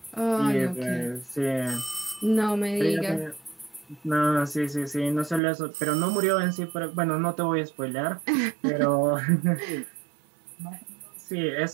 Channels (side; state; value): left; drops out; at 5.4 s